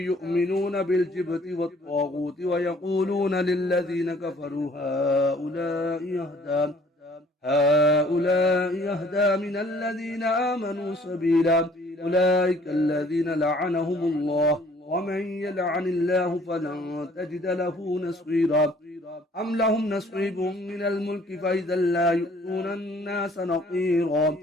بالجبت والطاغوت ويقولون للذين كفروا هؤلاء يهدى من الذين آمنوا سبيلا. أولئك الذين لعنهم الله ومن يلعن الله فلن تجد له نصيرا. أم لهم نصيب من الملك فإذا لا يؤتون الناس نقيرا.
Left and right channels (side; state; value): both; normal; correlation 0.57